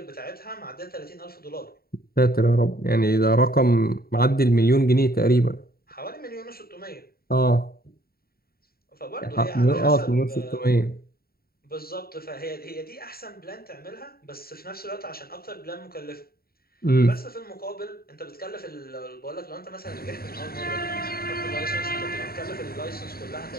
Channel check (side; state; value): right; late; 0.44 ms